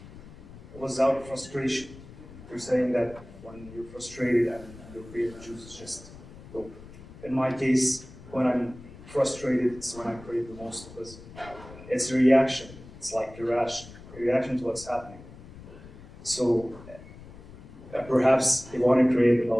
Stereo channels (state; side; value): noise; left; rumble, 17 dB below the sound